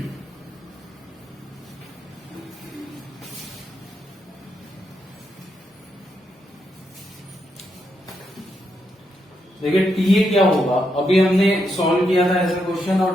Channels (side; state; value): both; normal; correlation 0.81